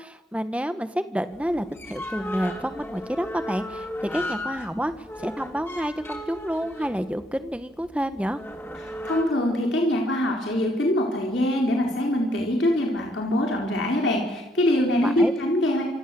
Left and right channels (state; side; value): normal; both; correlation 0.72